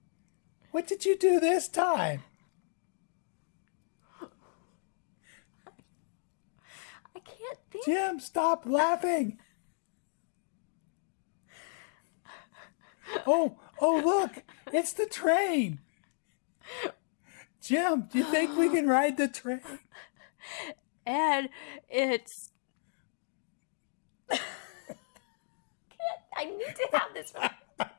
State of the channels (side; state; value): right; silent; digital silence